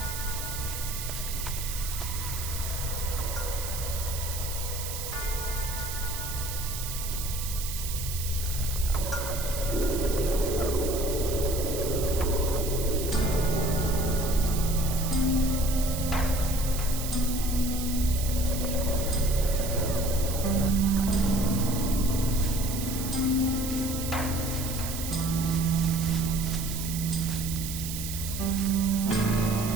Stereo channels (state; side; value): noise; right; hiss, 7 dB below the sound